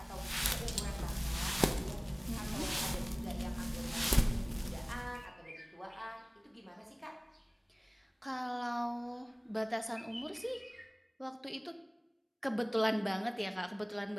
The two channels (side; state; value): both; identical; correlation 1.00